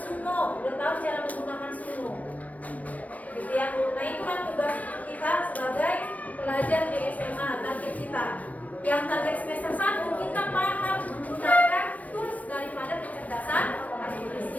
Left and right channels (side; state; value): right; late; 0.070 ms